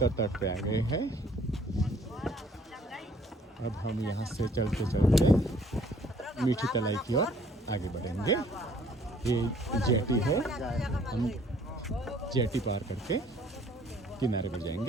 तट पे आ गए हैं। अब हम यहाँ से चलते चलते मीठी तलाई की ओर आगे बढ़ेंगे। ये जेटी है, हम जेटी पार करके किनारे पर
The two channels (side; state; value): both; normal; correlation 0.59